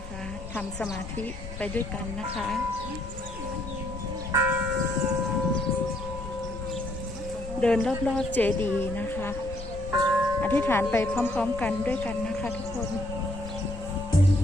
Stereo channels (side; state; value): left; noise; rumble, 11 dB below the sound